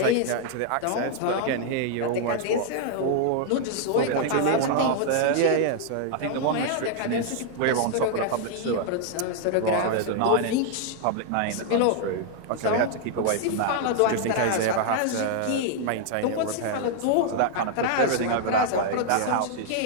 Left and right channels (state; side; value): different; both; correlation 0.00